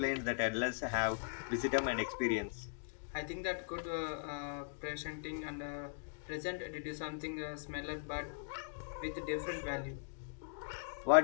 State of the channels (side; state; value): right; silent; digital silence